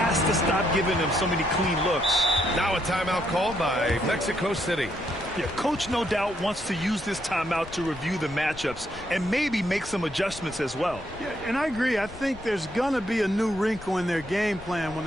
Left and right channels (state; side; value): noise; left; rumble, 17 dB below the sound